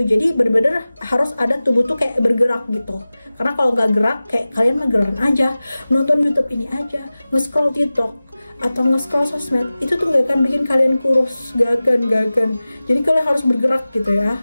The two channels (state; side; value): inverted; both; correlation -0.97